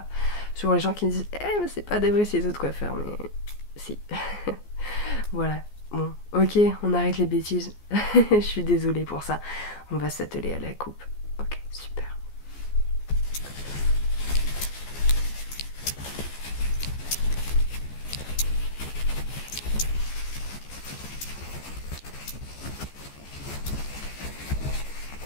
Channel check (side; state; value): right; late; 14 ms